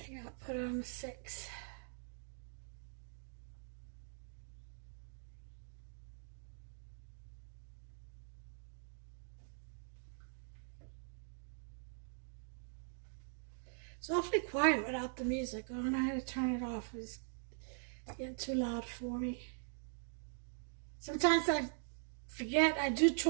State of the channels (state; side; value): silent; left; digital silence